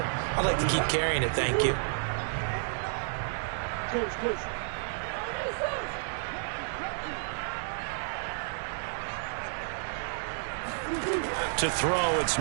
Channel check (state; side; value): silent; left; 57 dB below the other